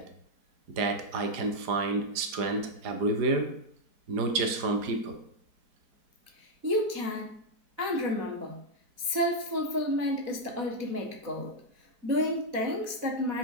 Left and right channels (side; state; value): left; late; 4.1 ms